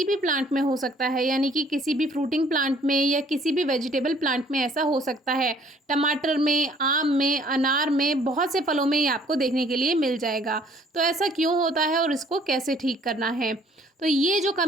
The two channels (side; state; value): both; normal; correlation 0.59